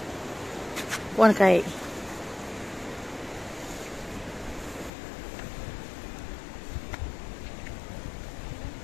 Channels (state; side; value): drops out; right; at 4.9 s